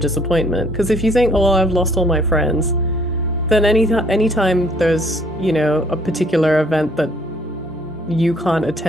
Because if you think, oh, well, I've lost all my friends, then anytime there's, a particular event that you can't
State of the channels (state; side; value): normal; both; correlation 0.61